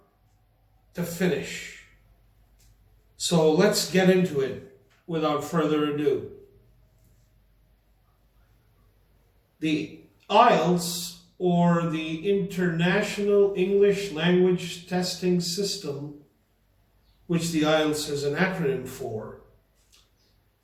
to finish. So let's get into it without further ado. The Ielts, or the International English Language Testing System, which the Ielts is an acronym for,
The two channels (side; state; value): both; identical; correlation 1.00